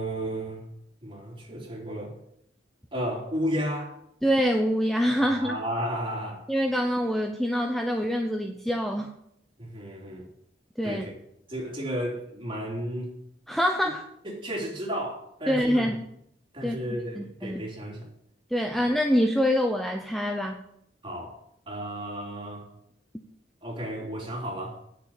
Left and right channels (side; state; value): both; normal; correlation 0.77